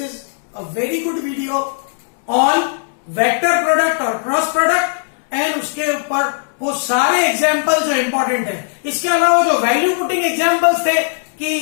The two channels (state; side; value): silent; right; digital silence